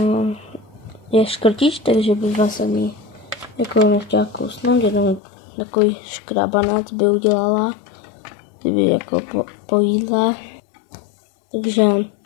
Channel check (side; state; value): right; drops out; at 5.2 s